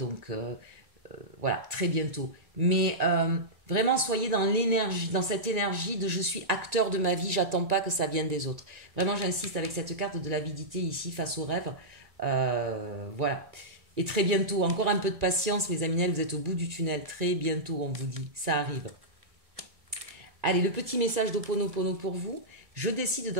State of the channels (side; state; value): left; late; 1.9 ms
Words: voilà, très bientôt. Mais vraiment, soyez dans l'énergie, dans cette énergie de je suis acteur de ma vie, j'attends pas que ça vienne des autres. Vraiment, j'insiste avec cette carte de l'avidité ici face au rêve. Voilà. Et très bientôt, encore un peu de patience, mes amis, vous êtes au bout du tunnel. Très bientôt, on vous dit, ça arrive. Allez, le petit message d'Ho'oponopono pour vous. Je décide